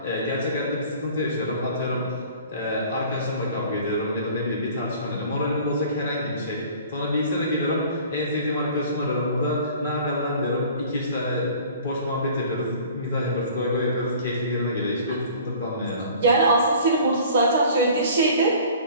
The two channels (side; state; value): both; inverted; correlation -0.48